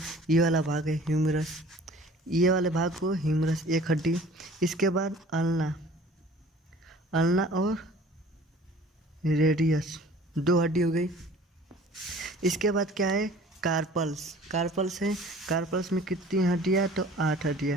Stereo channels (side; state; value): both; normal; correlation 0.48